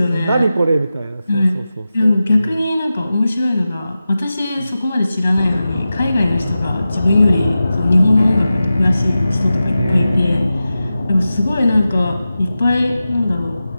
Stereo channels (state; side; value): inverted; both; correlation -0.93